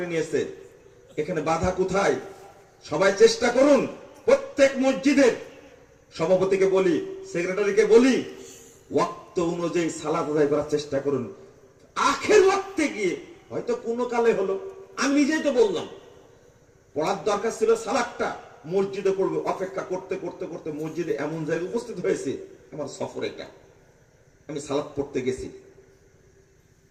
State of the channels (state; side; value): identical; both; correlation 1.00